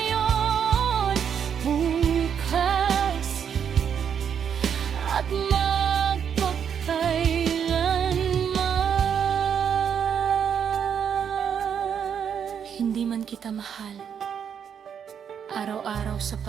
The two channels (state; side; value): quieter; left; 7.9 dB